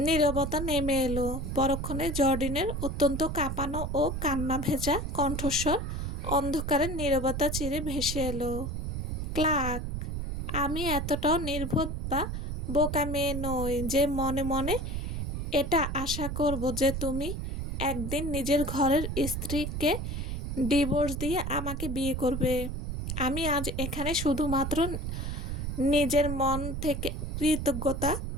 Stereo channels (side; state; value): right; noise; rumble, 3 dB below the sound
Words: নীরবতা নেমে এলো। পরক্ষণে জর্ডিনের অত্যন্ত কাঁপানো ও কান্না ভেজা কণ্ঠস্বর অন্ধকারের নীরবতা চিরে ভেসে এলো। ক্লার্ক, আমি এতটাও নির্বোধ বা বোকা মেয়ে নই যে মনে মনে এটা আশা করব যে তুমি একদিন নিজের ঘরের স্ত্রীকে ডিভোর্স দিয়ে আমাকে বিয়ে করবে। আমি আজ এখানে শুধুমাত্র নিজের মন থেকে কৃতজ্ঞতা